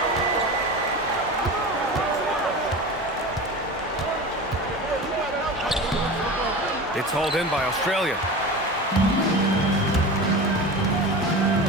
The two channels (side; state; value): both; normal; correlation 0.31